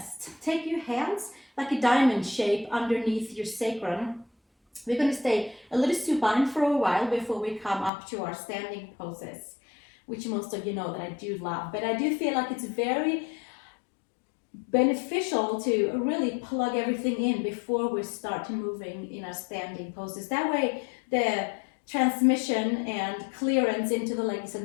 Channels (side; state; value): right; drops out; at 7.9 s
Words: Take your hands like a diamond shape underneath your sacrum. We're going to stay a little supine for a while before we come up to our standing poses, which most of you know that I do love. But I do feel like it's very beneficial to really plug everything in before we start moving in our standing poses. That way the transmission and clearance into the legs and